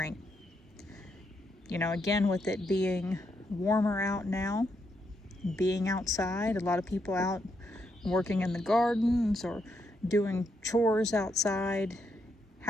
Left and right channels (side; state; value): both; normal; correlation 0.79